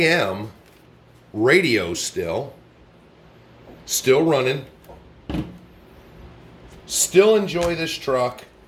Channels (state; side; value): identical; both; correlation 1.00